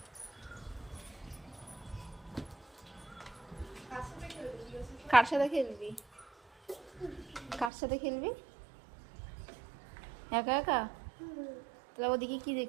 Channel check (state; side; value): drops out; left; at 7.7 s